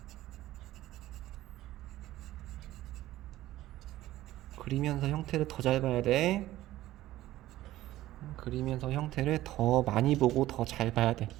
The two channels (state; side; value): quieter; left; 15.2 dB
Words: 그리면서 형태를 더 잘 봐야 돼. 그리면서 형태를 더 많이 보고 더 잘 봐야 돼.